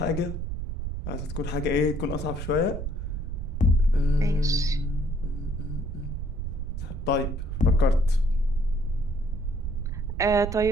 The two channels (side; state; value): right; noise; rumble, 4 dB below the sound